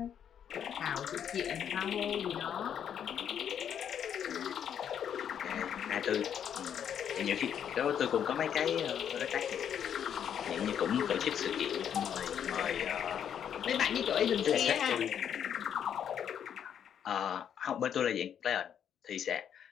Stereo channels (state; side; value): quieter; right; 8.8 dB